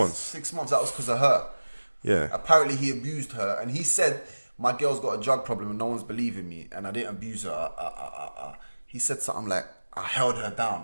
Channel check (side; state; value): both; inverted; correlation -1.00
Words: 6 months, that was because of her. Yeah. Apparently he abused her, and he said, my girl's got a drug problem and no one's believing me, and I didn't abuse her. He said something like, I held her